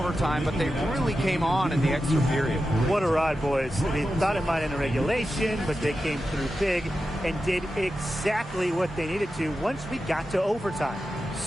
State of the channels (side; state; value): both; normal; correlation 0.91